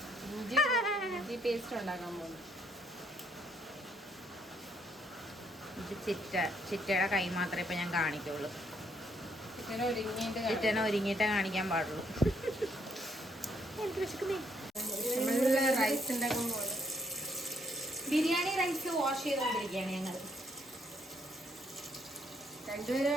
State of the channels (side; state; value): both; normal; correlation 0.71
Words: പേസ്റ്റ് ഉണ്ടാക്കാൻ പോകുന്നു. ഇത് ചിറ്റയുടെ കൈ മാത്രമേ ഇപ്പൊ ഞാൻ കാണിക്കുള്ളൂ. ചിറ്റനെ ഒരുങ്ങിയിട്ടേ കാണിക്കാൻ പാടുള്ളൂ. റൈസ് ഉണ്ടാക്കാൻ പോകുന്നു. ബിരിയാണി റൈസ് വാഷ് ചെയ്തുകൊണ്ടിരിക്കുകയാണ് ഞങ്ങൾ. രണ്ടുപേര്